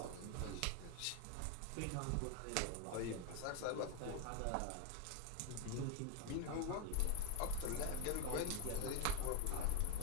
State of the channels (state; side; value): different; both; correlation 0.02